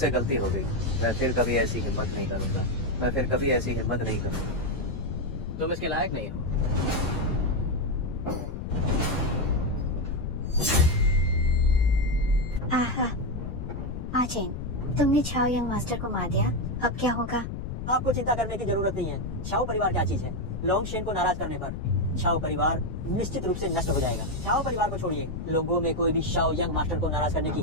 गलती हो गई। मैं फिर कभी ऐसी हिम्मत नहीं करूंगा। मैं फिर कभी ऐसी हिम्मत नहीं करूंगा। तुम इसके लायक नहीं हो। आहा, आचेन, तुमने छाओ यंग मास्टर को मार दिया, अब क्या होगा? आपको चिंता करने की जरूरत नहीं है। शाओ परिवार क्या चीज है? लोंगशेन को नाराज करने पर शाओ परिवार निश्चित रूप से नष्ट हो जाएगा। शाओ परिवार को छोड़िए, लोगों में कोई भी शाओ यंग मास्टर को नाराज करने की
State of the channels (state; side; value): noise; left; rumble, 6 dB below the sound